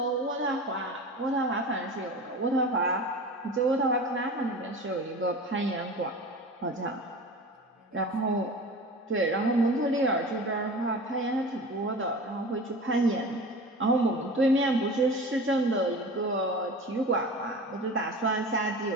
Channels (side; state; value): both; normal; correlation 0.35